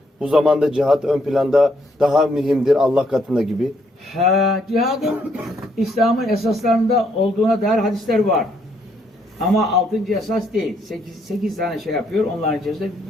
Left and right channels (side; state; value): both; normal; correlation 0.71